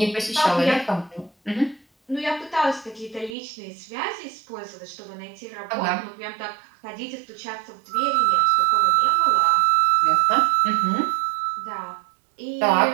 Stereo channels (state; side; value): drops out; left; at 3.4 s